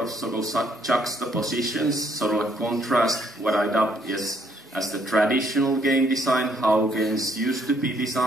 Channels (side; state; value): both; normal; correlation 0.68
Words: sort of juxtapositions, sort of a contrast, what I dubbed as the traditional game design, how games used to be